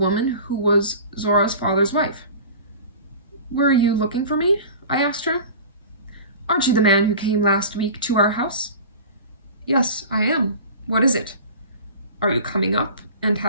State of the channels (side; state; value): both; inverted; correlation -0.38